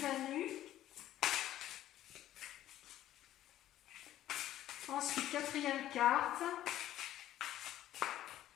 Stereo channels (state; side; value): quieter; right; 13.1 dB